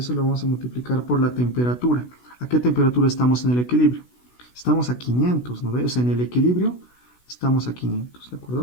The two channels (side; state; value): right; late; 16 ms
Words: lo vamos a multiplicar por la temperatura. ¿A qué temperatura estamos en el equilibrio? Estamos a 500, ¿no ves? O sea, en el equilibrio estamos a 500, ¿de